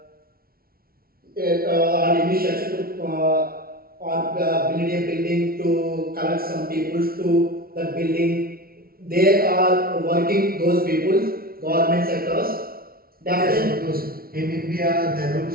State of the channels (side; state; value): left; late; 0.44 ms